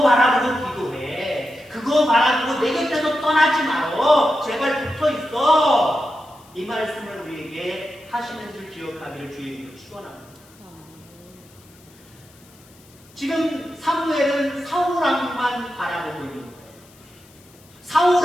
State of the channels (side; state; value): left; noise; hiss, 27 dB below the sound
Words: 바라보고 기도해. 그거 바라보고 내 곁에서 떠나지 말어. 제발 붙어 있어. 이 말씀을 우리에게 하시는 줄 기억하기를 주의 이름으로 축원합니다. 지금 사무엘은 사울왕만 바라보고 있는 거예요.